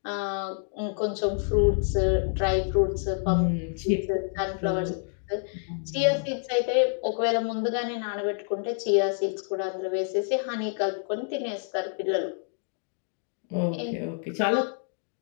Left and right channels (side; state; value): right; silent; 60 dB below the other